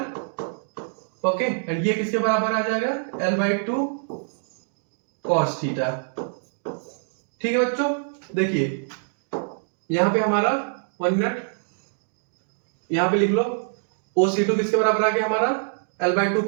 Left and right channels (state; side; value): silent; left; digital silence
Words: okay, and ये किसके बराबर आ जाएगा, L/2 cos थीटा, ठीक है बच्चों। देखिए यहाँ पे हमारा 1 मिनट, यहाँ पे लिख लो OC2 किसके बराबर आ गया हमारा L/2